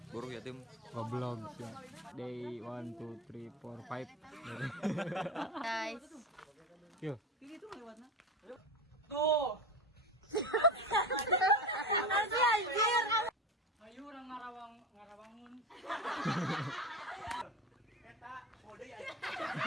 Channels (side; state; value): both; normal; correlation 0.25